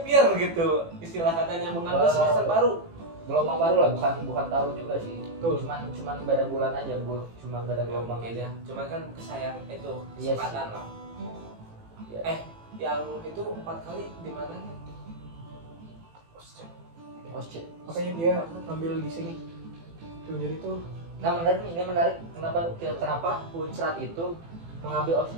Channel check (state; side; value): late; left; 18 ms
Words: year gitu. Istilah katanya mengambil Wow. semester baru. Gelombang baru lah, bukan tahun juga sih. Betul. Cuman beda bulan aja, Bu. Cuman beda gelombang Mungkin aja. ya. Cuman kan kesayang itu Iya kesempatan sih. lah. Iya. Yang itu 4 kali di mana nih? Osce. makanya dia ambil di sini tuh, jadi tuh Nah menarik nih, ini menarik. Kenapa Unsrat itu mengambil